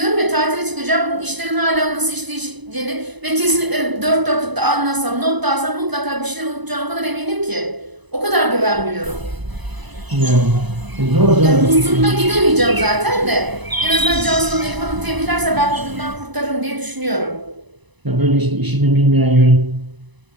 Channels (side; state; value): left; late; 1.0 ms